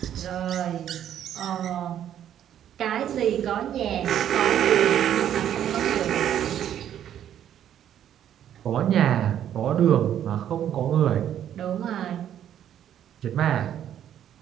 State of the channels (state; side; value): quieter; left; 10.4 dB